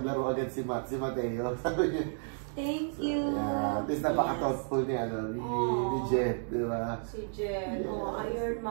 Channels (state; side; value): silent; left; digital silence